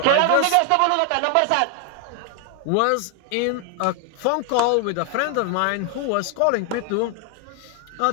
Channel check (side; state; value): both; different; correlation 0.00